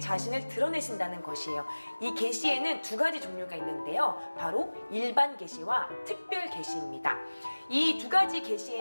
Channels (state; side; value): inverted; both; correlation -1.00